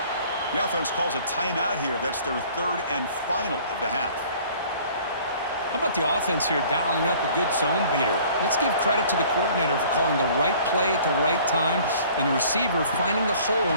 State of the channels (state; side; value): inverted; both; correlation -0.52